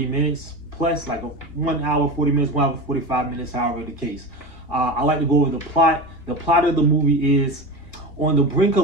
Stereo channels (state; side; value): late; right; 2.2 ms